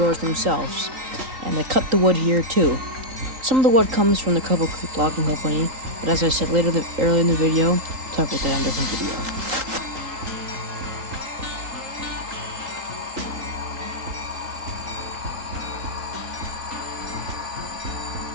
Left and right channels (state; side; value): late; left; 3.8 ms